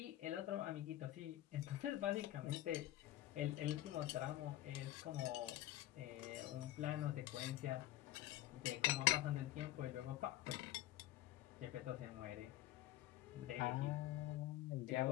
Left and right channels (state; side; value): quieter; right; 14.7 dB